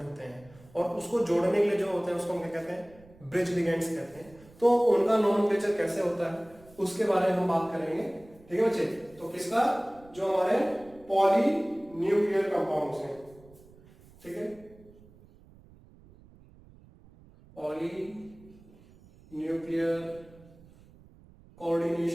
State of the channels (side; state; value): right; noise; rumble, 25 dB below the sound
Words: होते हैं और उसको जोड़ने के लिए जो होते हैं उसको हम क्या कहते हैं, ब्रिज लिगेंड्स कहते हैं। तो उनका नोमेनक्लेचर कैसे होता है उसके बारे में हम बात करेंगे। ठीक है बच्चे, तो किसका, जो हमारे पॉली न्यूक्लियर कंपाउंड्स हैं। ठीक है, पॉली न्यूक्लियर